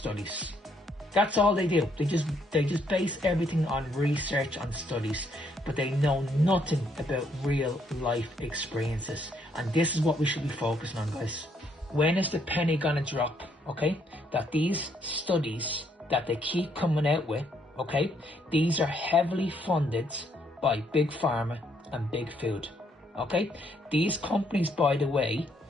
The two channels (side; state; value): both; normal; correlation 0.71